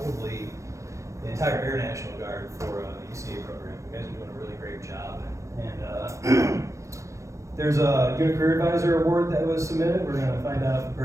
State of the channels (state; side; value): late; left; 0.15 ms